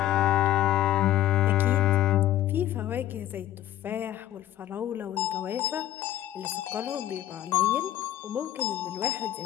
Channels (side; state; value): right; quieter; 13.0 dB